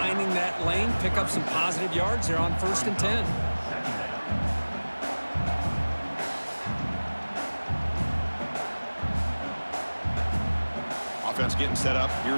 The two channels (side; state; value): both; inverted; correlation -1.00